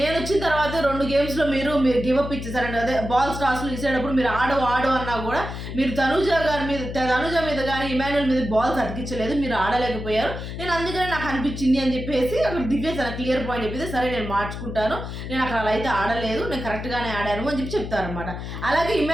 వచ్చిన తర్వాత 2 గేమ్స్లో మీరు గివప్ ఇచ్చేసారండి. అదే బాల్స్ టాస్లు ఇచ్చేటప్పుడు మీరు ఆడు అన్నా కూడా మీరు తనుజ మీద కానీ ఇమాన్యుల్ మీద బాల్స్ అతికించలేదు, మీరు ఆడలేకపోయారు. నేను అందుకనే నాకు అనిపించింది అని చెప్పేసి అక్కడ దివ్య తన క్లియర్ పాయింట్ చెప్పేసి, సరే నేను మార్చుకుంటాను, నేను అక్కడ అలా అయితే ఆడలేదు, నేను కరెక్ట్గానే ఆడాను అని చెప్పి చెప్తారనమాట. అలాగే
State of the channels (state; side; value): noise; left; hum, 7 dB below the sound